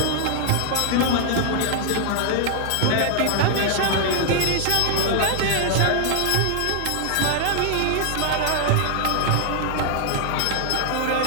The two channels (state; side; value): different; both; correlation 0.00